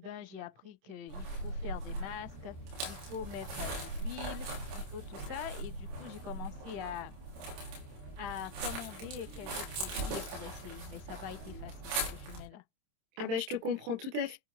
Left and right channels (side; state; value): left; late; 27 ms